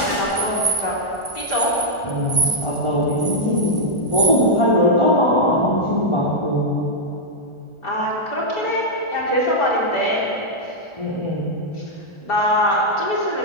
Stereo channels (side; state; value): right; late; 1.4 ms